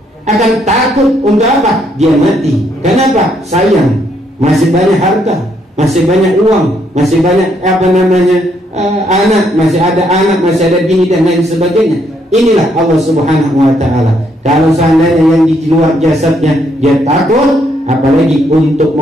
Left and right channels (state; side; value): normal; both; correlation 0.72